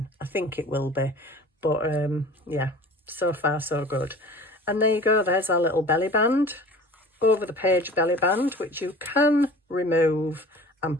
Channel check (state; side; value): normal; both; correlation 0.42